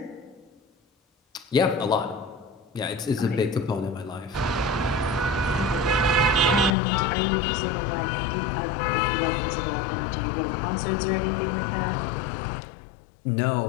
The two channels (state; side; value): drops out; right; at 6.7 s